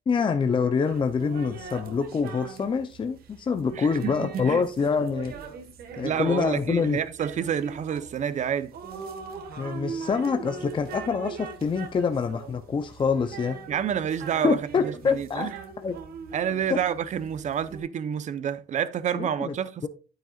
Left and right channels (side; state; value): both; normal; correlation 0.54